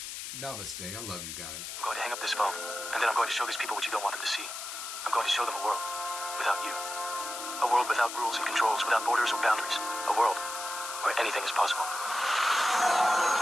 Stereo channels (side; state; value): left; noise; hiss, 7 dB below the sound